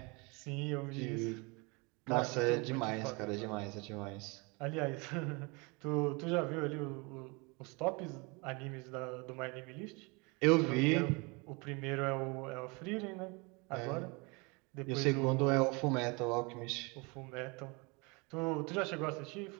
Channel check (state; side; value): quieter; left; 28.9 dB